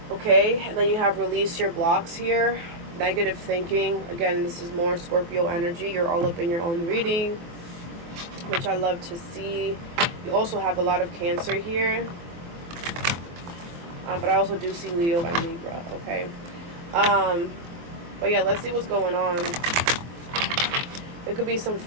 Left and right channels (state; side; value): late; left; 23 ms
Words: Okay, and then you have release your blocks here. Negative thinking. Again, this is more Scorpio energy. You're all up in your own reading. which I love to see. You also have a lot of Cancer here. But I also do see Leo and Libra, okay? But yeah, let's see what's going on. There could be some